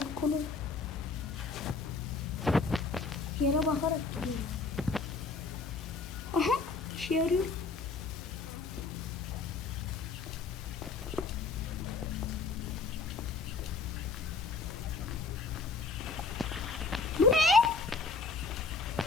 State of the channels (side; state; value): right; quieter; 4.2 dB